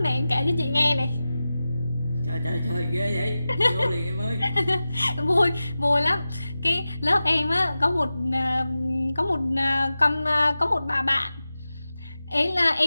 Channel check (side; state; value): both; inverted; correlation -0.94